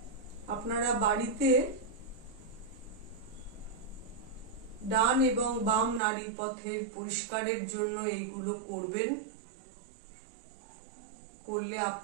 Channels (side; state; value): left; drops out; at 6.0 s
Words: আপনারা বাড়িতে ডান এবং বাম নাড়িপথের পরিষ্কারের জন্য এইগুলো করবেন। করলে